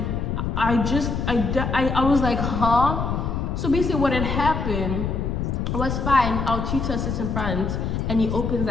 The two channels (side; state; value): left; noise; rumble, 1 dB below the sound